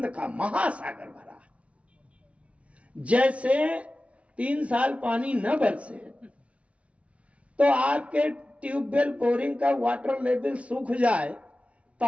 का महासागर भरा। जैसे 3 साल पानी न बरसे तो आपके ट्यूबवेल बोरिंग का वाटर लेवल सूख जाए,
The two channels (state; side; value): late; left; 0.063 ms